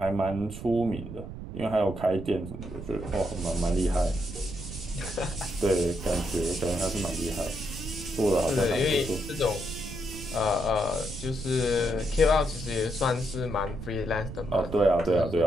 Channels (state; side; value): noise; right; rumble, 10 dB below the sound